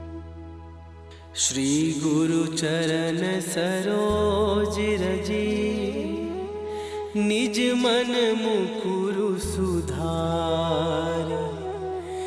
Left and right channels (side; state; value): both; identical; correlation 1.00